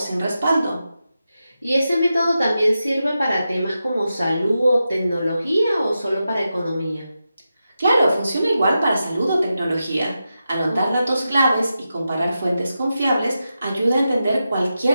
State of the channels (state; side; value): inverted; both; correlation -0.90